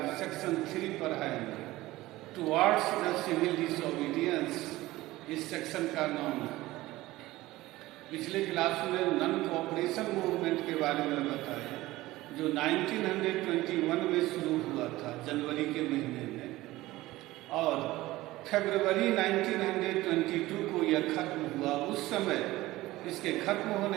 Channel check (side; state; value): left; quieter; 17.9 dB